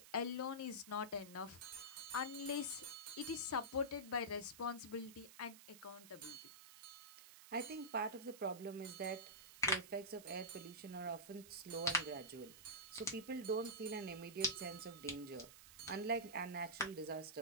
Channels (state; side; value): noise; right; hiss, 16 dB below the sound